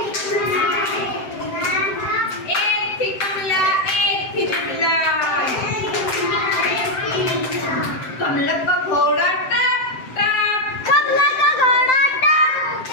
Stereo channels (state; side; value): late; right; 7.7 ms